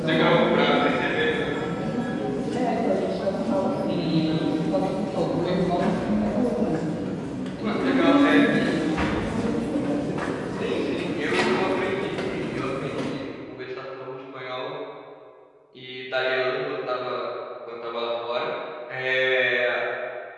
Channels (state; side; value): identical; both; correlation 1.00